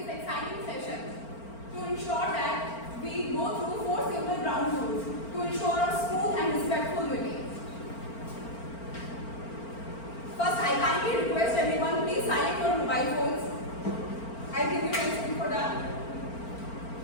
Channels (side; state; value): right; late; 4.4 ms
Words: exciting session, to ensure that we go through 4 simple ground rules to ensure a smooth and respectful meeting. First, I kindly request everyone, please silence your mobile phones. I'll give you 10 seconds for that.